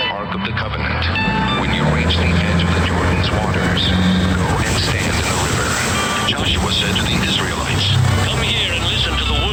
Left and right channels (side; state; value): both; identical; correlation 1.00